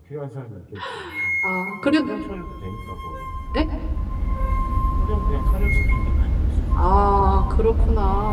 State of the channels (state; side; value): identical; both; correlation 1.00